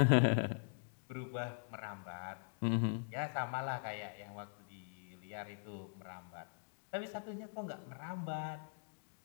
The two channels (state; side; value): silent; right; digital silence